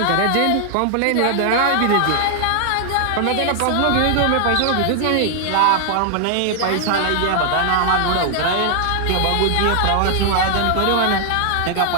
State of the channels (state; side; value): different; both; correlation 0.00